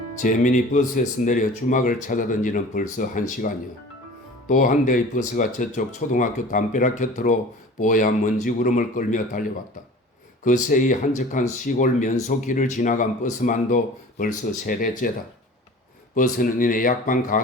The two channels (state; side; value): normal; both; correlation 0.42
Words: 재민이 버스에서 내려 주막을 찾아던 지는 벌써 1시간이요. 또 한 대의 버스가 저쪽 초등학교 담벼락 곁으로 뽀얀 먼지구름을 끌며 달려왔다. 그 새이 한적한 시골 면소길을 지나간 버스만도 벌써 3대째다. 버스는 이내 약방